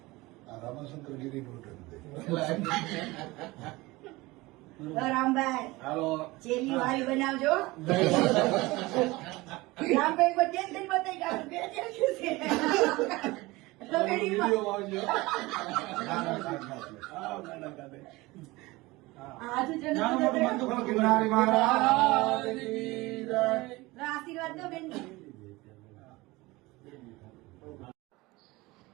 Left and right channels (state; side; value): quieter; left; 21.3 dB